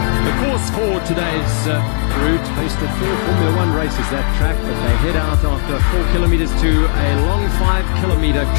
The course for today's route hosted 4 Formula 1 races, that track, but they head out after 4 kilometers to a long 5-kilometer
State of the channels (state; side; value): silent; right; 67 dB below the other